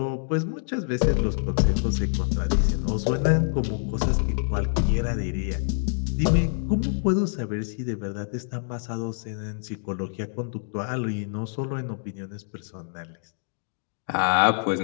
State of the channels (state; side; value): silent; right; digital silence